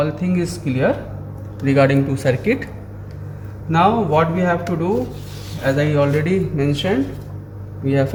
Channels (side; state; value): both; identical; correlation 1.00